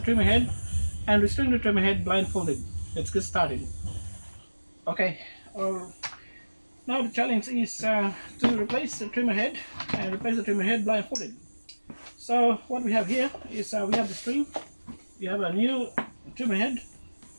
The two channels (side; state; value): both; inverted; correlation -1.00